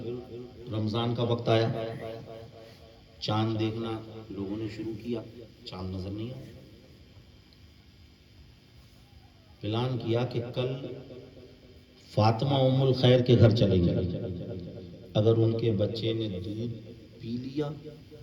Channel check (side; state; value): both; identical; correlation 1.00